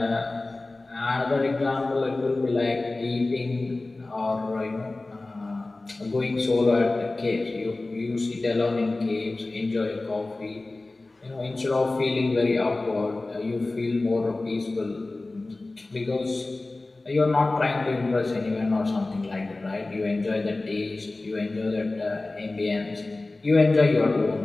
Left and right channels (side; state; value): right; quieter; 3.1 dB